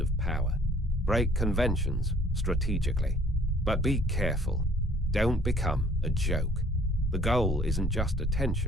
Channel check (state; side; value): normal; both; correlation 0.57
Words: power. Break conventions strategically. But be careful. Don't become a joke. The goal isn't just